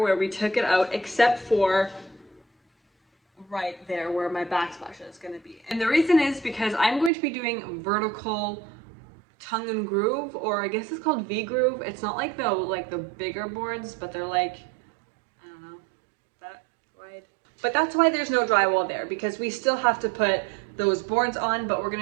we took it out, except for right there where my backsplash is going to be. And the reason is because I'm going to be doing vertical tongue and groove, or I guess it's called V-groove. It's not like the bigger boards, but they're like, I don't know, that wide. But that's why there's no drywall there, because we still have to put those boards on, but we're going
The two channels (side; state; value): left; drops out; at 7.1 s